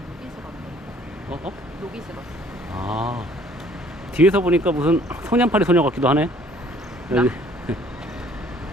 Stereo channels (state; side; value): normal; both; correlation 0.58